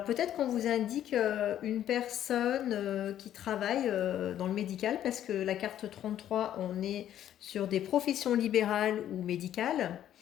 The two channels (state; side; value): quieter; right; 11.2 dB